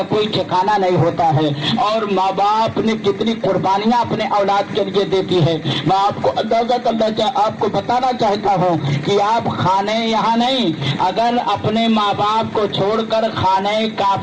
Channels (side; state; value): both; identical; correlation 1.00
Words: कोई ठिकाना नहीं होता है और माँ बाप ने कितनी कुर्बानियां अपने औलाद के लिए देती है। मैं आपको अंदाजा करना आपको बताना चाहता हूँ कि आप खाने यहाँ नहीं, अगर अपने माँ बाप को छोड़कर खाने